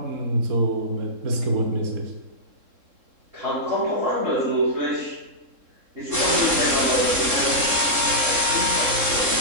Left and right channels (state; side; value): late; left; 3.7 ms